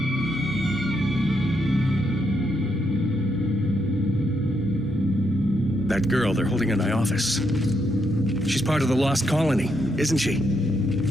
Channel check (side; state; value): both; normal; correlation 0.79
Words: That girl they're holding in my office. She's part of the lost colony, isn't she?